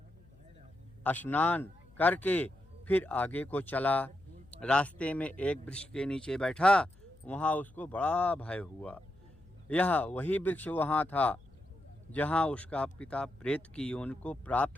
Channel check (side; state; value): left; noise; hum, 26 dB below the sound